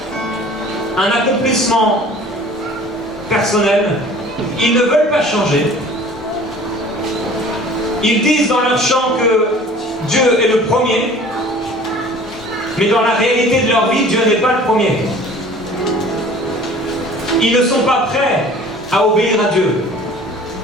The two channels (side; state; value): both; normal; correlation 0.47